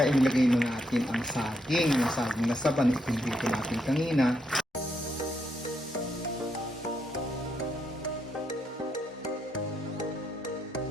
inilagay na natin ang saging. Yung saging na saban, itong dito natin kanina.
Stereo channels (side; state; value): both; normal; correlation 0.79